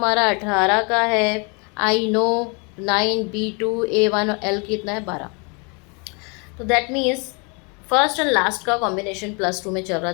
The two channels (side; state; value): right; quieter; 33.0 dB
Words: 18 का है, I नो 9, B2, A1 और L कितना है 12। तो that means first and last का कॉम्बिनेशन +2 में चल रहा